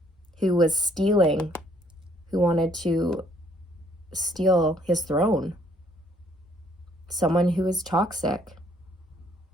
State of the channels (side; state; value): both; normal; correlation 0.65